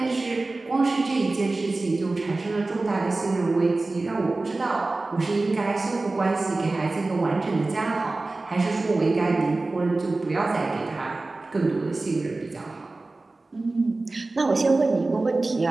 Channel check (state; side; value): quieter; left; 3.2 dB